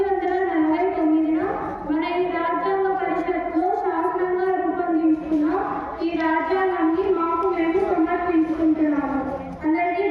మన ఈ రాజ్యాంగ పరిషత్లో శాసనంగా రూపొందించుకున్న ఈ రాజ్యాంగాన్ని మాకు మేము సమర్పించుకుంటున్నాము. అందరికీ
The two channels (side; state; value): both; identical; correlation 1.00